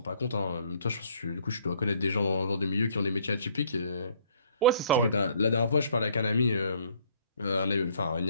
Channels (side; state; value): both; inverted; correlation -0.61